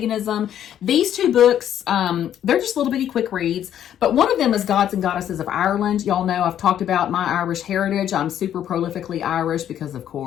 These two books, they're just little bitty quick reads. But one of them is Gods and Goddesses of Ireland. Y'all know I've talked about my Irish heritage. I'm super prolifically Irish because, of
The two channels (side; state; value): right; quieter; 10.4 dB